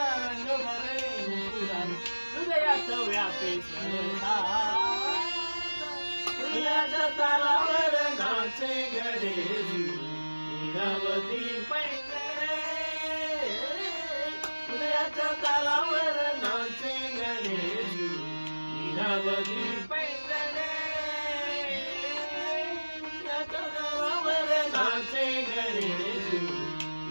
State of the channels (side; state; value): both; inverted; correlation -1.00